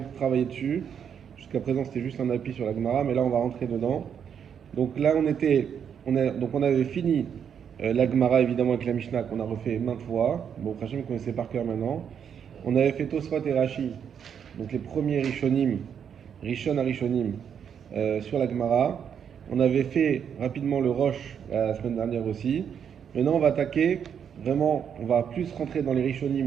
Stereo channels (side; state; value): left; quieter; 7.9 dB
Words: travailler dessus. Jusqu'à présent, c'était juste un appui sur la Gemara, mais là, on va rentrer dedans. Donc là, on avait fini la Gemara, évidemment, avec la Mishnah, qu'on a refait maintes fois. Bon, Hachem, vous connaissez par cœur maintenant. On avait fait Tosfot et Rashi, donc les premiers Rishonim, Rishon à Rishonim, sur la Gemara. On avait fait rapidement le Rosh la semaine dernière aussi. Maintenant, on va attaquer, vraiment, on va plus rentrer dans les